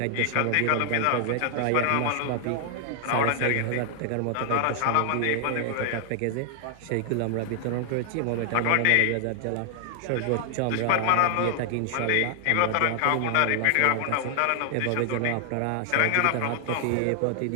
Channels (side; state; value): both; different; correlation 0.00